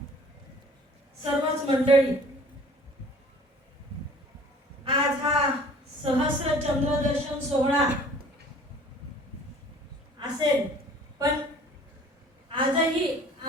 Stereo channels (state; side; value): normal; both; correlation 0.50